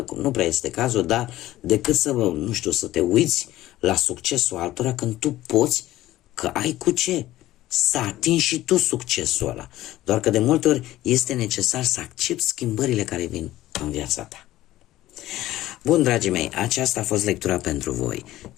nu prea este cazul, dar decât să, nu știu, să te uiți la succesul altora când tu poți, că ai cu ce să atingi și tu succesul ăla. Doar că de multe ori este necesar să accepti schimbările care vin în viața ta. Bun, dragii mei, aceasta a fost lectura pentru voi.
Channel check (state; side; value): quieter; right; 15.4 dB